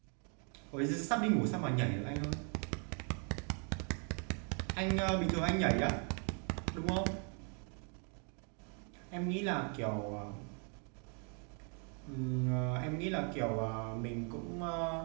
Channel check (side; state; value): left; quieter; 39.8 dB